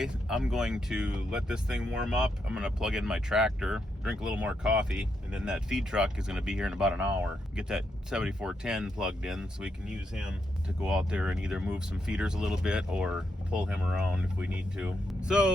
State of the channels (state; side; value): normal; both; correlation 0.81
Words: I'm going to let this thing warm up. I'm gonna plug in my tractor, drink a little more coffee, and then that feed truck is gonna be here in about an hour. Get that 7410 plugged in so we can use him to go out there and either move some feeders a little bit or pull him around if we need to.